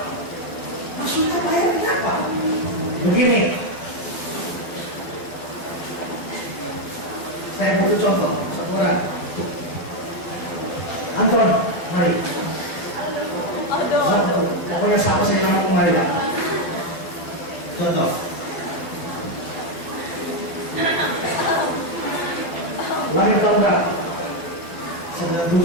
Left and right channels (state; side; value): late; right; 12 ms